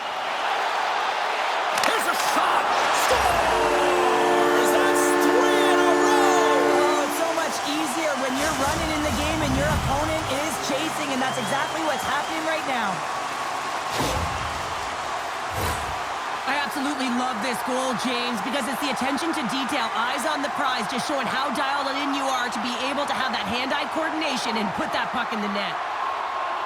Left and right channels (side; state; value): both; identical; correlation 1.00